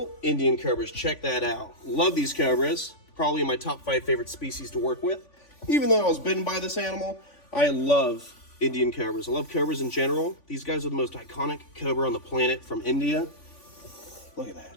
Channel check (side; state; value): right; late; 3.5 ms